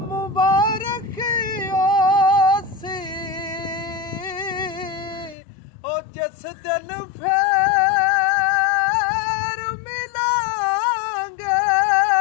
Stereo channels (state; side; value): drops out; right; at 5.4 s